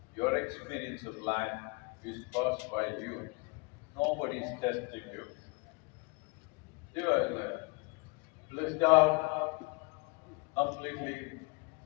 Your experience of life is caused by you. Nobody is testing you. You are blissed out, completely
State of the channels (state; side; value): quieter; right; 28.6 dB